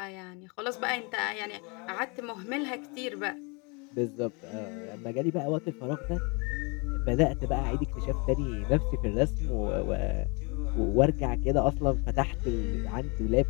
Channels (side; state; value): right; quieter; 31.0 dB